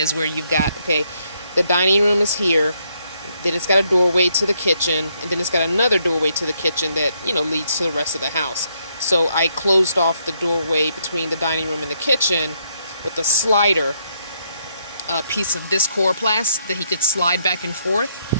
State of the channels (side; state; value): both; inverted; correlation -0.74